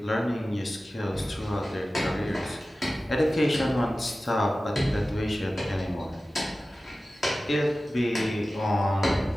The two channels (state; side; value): normal; both; correlation 0.96